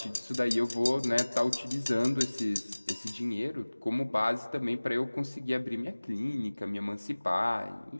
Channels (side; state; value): both; inverted; correlation -1.00